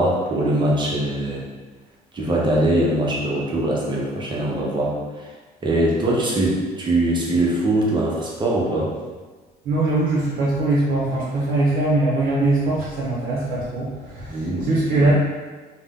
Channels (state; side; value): normal; both; correlation 0.60